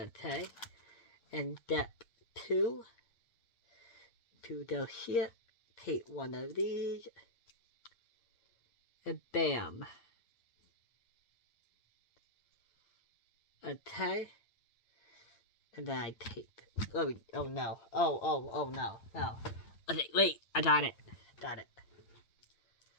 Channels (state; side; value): late; right; 8.9 ms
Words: And step 2. To go here. Take one of these. And bam. Okay. And then I take. Oh no. Oh no. No. Okay, wait. I got it. Got it.